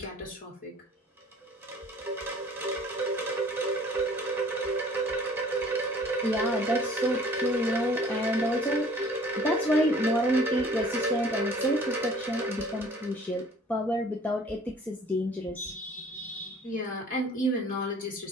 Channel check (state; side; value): normal; both; correlation 0.52